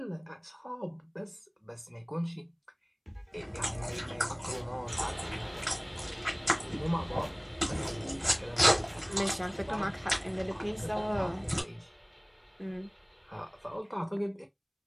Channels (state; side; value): identical; both; correlation 1.00